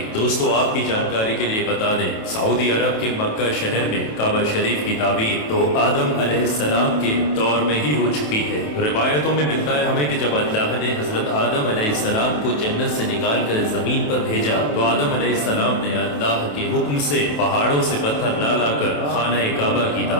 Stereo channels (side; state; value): right; late; 27 ms